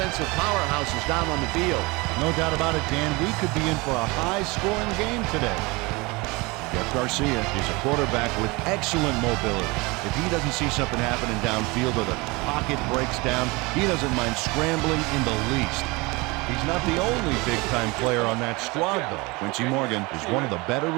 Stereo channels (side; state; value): left; quieter; 25.0 dB